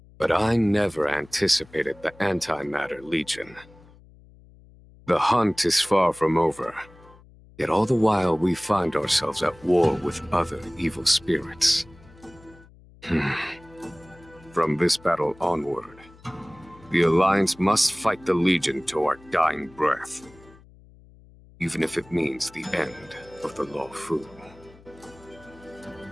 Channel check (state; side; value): noise; left; hum, 25 dB below the sound